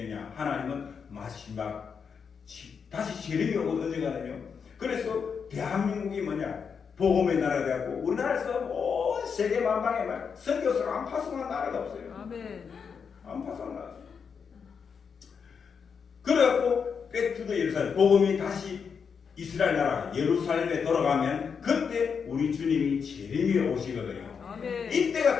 하나님은 마지막 다시 재림이 오고 언젠가는요. 그래서 대한민국이 뭐냐? 복음의 나라가 되었고 우리나라에서 온 세계 만방에 막 선교사를 안 파송한 나라가 없어요. 아멘. 안 파송한 나라. 그래갖고 백투더 예루살렘 복음이 다시 이스라엘 나라 예루살렘에 돌아가면 그때 우리 주님이 재림이 오시거든요. 아멘. 이때가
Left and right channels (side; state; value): right; quieter; 6.3 dB